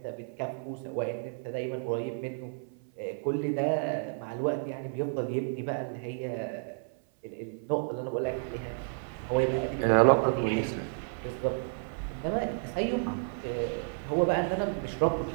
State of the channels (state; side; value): silent; left; 55 dB below the other